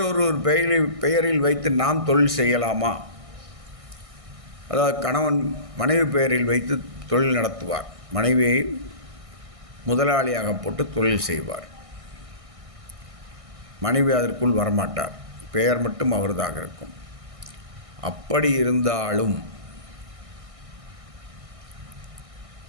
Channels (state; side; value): late; left; 1.6 ms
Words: பெயரில் வைத்து நாம் தொழில் செய்யலாமா? அதாவது கணவன் மனைவி பெயரில் வைத்து தொழில் நடத்துவார், மனைவியை முதலாளியாக போட்டு தொழில் செய்வார், மனைவி அதற்குள் வரமாட்டார், பெயர் மட்டும் அவர்தாக இருக்கும். அப்படி இருந்தாலும்